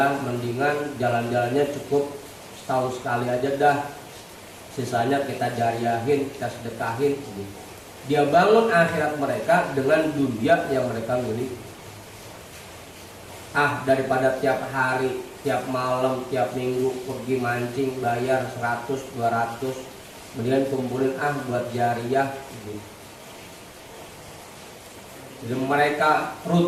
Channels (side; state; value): both; identical; correlation 1.00